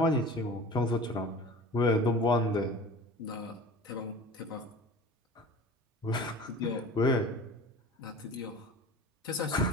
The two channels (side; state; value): both; normal; correlation 0.39